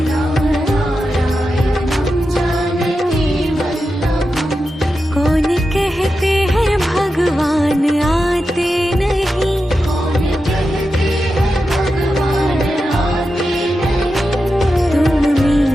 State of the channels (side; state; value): both; normal; correlation 0.90